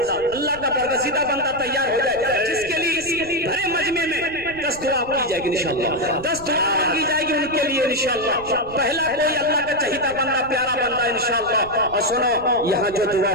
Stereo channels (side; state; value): right; noise; rumble, 17 dB below the sound